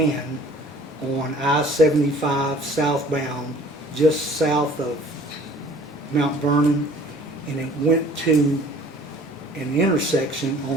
on I-75 southbound, just south of Mount Vernon, and it went to an intersection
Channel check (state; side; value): normal; both; correlation 0.51